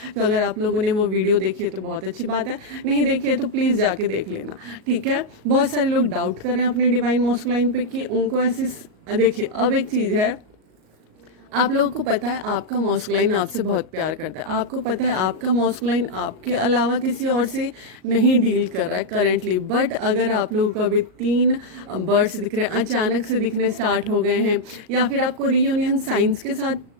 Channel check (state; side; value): late; left; 38 ms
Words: तो अगर आप लोगों ने वो वीडियो देखी है तो बहुत अच्छी बात है, नहीं देखी है तो प्लीज़ जाके देख लेना, ठीक है। बहुत सारे लोग डाउट कर रहे हैं अपने डिवाइन मॉस्कुलाइन पे कि उनको ऐसे, देखिए अब एक चीज़ है, आप लोगों को पता है आपका मॉस्कुलाइन आपसे बहुत प्यार करता है। आपको पता है आपका मॉस्कुलाइन आपके अलावा किसी और से नहीं डील कर रहा है करेंटली। बट अगर आप लोगों को अभी 3 बर्ड्स दिख रहे हैं, अचानक से दिखने स्टार्ट हो गए हैं, या फिर आपको रीयूनियन साइंस के साथ